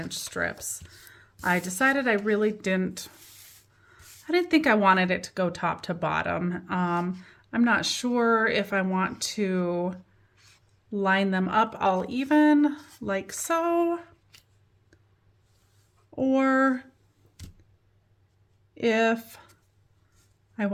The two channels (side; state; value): both; identical; correlation 1.00